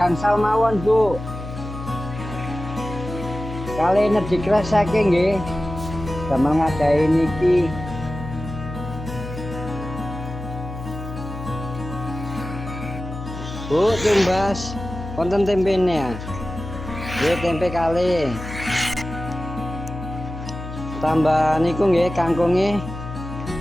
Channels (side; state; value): left; noise; hum, 9 dB below the sound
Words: mawon Bu. Kali energi kresake nggih. Damel ngadahi niki. Bu, tumbas wonten tempene ya. Nggih tempe kali. Tambah niku nggih kangkunge.